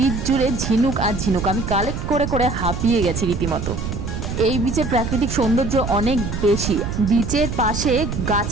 জুড়ে ঝিনুক আর ঝিনুক। আমি কালেক্ট করে করে হাঁপিয়ে গেছি রীতিমতো। এই বিচের প্রাকৃতিক সৌন্দর্য অনেক বেশি। বিচের পাশে গাছ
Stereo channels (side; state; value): right; noise; rumble, 4 dB below the sound